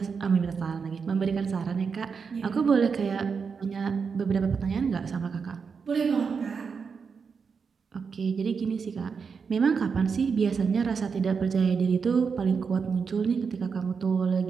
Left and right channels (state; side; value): quieter; left; 5.7 dB